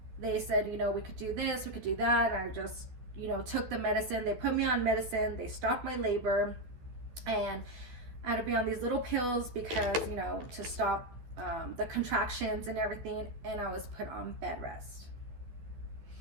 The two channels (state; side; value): late; left; 12 ms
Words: they said, you know, we could do this, we could do that. And I just, you know, took the medicine. They put me on medicine. They stopped my labor. And I had to be on these little pills because, you know, to stop the contractions and everything. And I was put on bed rest.